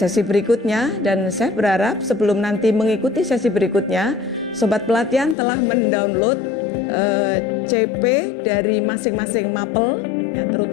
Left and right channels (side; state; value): right; drops out; at 5.4 s